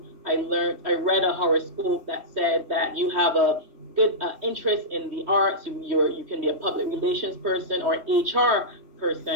I read a horoscope that said that you have a good interest in the arts. You can be a public relations person or HR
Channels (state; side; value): late; left; 3.1 ms